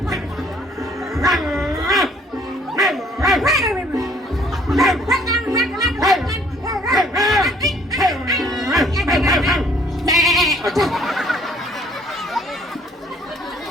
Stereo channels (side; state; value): both; normal; correlation 0.60